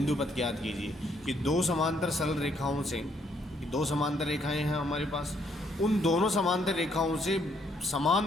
पथ ज्ञात कीजिए। कि दो समांतर सरल रेखाओं से, दो समांतर रेखाएं हैं हमारे पास, उन दोनों समांतर रेखाओं से समान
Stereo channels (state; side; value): normal; both; correlation 0.70